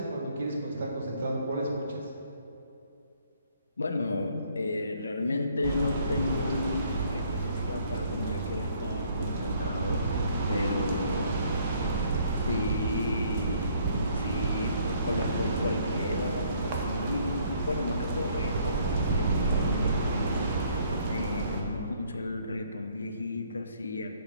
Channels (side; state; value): both; inverted; correlation -0.63